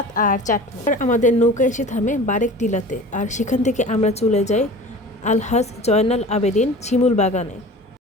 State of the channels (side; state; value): both; normal; correlation 0.39